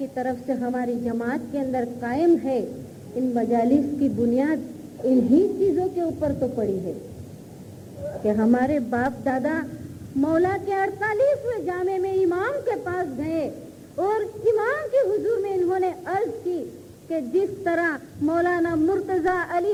तरफ से हमारी जमात के अंदर कायम है, इन मजालिस की बुनियाद इन्हीं चीजों के ऊपर तो पड़ी है कि हमारे बाप दादा मौला के 48वें जामे में इमाम के पास गए और इमाम के हुजूर में इन्होंने अर्ज की कि जिस तरह मौलाना मुर्तजा अली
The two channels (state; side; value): identical; both; correlation 1.00